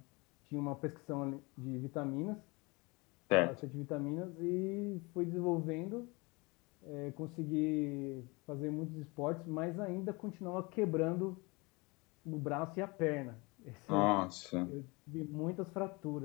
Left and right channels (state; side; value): quieter; right; 26.4 dB